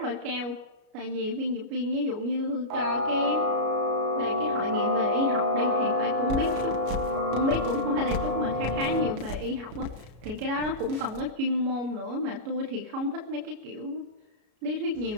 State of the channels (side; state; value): left; late; 33 ms